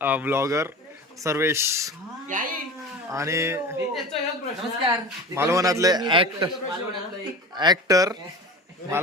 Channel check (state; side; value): normal; both; correlation 0.34